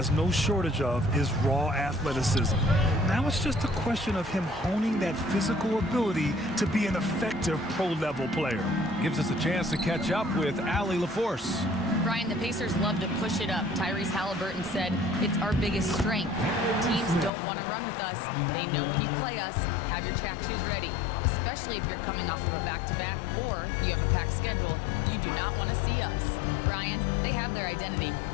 no shortage of is raw athleticism. Now it's just a question of him honing that physical ability to be an effective pro-level player. Gives us a chance to catch up with Allie LaForce. Brian, the Pacers love to push it up. Tyrese Halliburton said it's our biggest strength. Teams don't want to run with us. They know when you play us, have your track shoes ready, especially if you're coming off of a back-to-back or you have a packed schedule. You do not want to see us. Brian, they have their identity.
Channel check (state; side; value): drops out; right; at 17.3 s